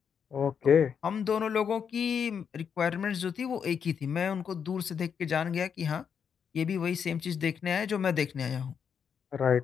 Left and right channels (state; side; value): quieter; right; 7.2 dB